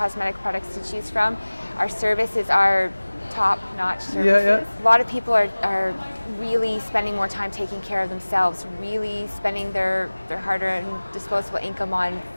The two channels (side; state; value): both; inverted; correlation -1.00